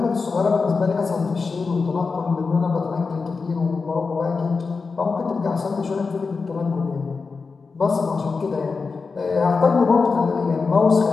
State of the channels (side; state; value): right; quieter; 4.6 dB